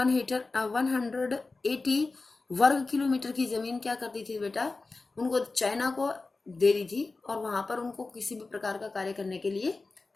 वर्ग किलोमीटर की जमीन क्या करती थी बेटा, उनको चाइना को दे दी थी और वहां पर उनको किसी भी प्रकार का कार्य करने के लिए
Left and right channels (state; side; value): quieter; right; 3.7 dB